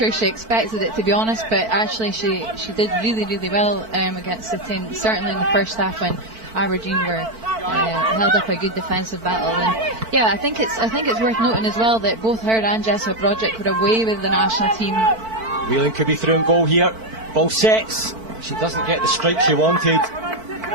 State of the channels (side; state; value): left; late; 4.5 ms